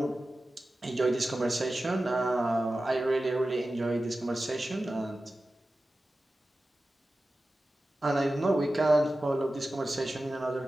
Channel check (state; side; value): normal; both; correlation 0.94